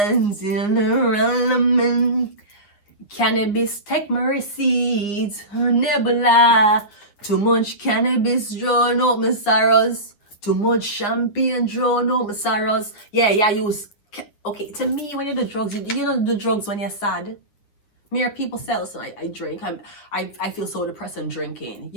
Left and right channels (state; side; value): late; right; 9.8 ms